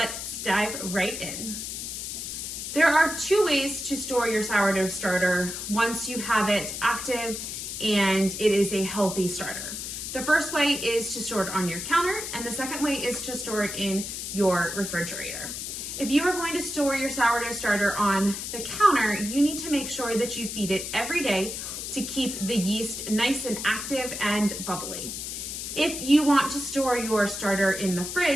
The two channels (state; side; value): noise; left; hiss, 6 dB below the sound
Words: dive right in. There are two ways to store your sourdough starter once you have it active and it is a healthy starter. The first way is to store it on your counter, and the second way is to store it in your refrigerator. If you are going to store your sourdough starter on the counter, you need to make sure that you feed it every day to keep the yeast nice and active and bubbly. If you want to store your starter in the